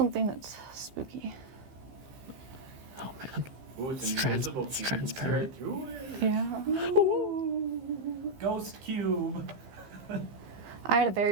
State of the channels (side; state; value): left; late; 15 ms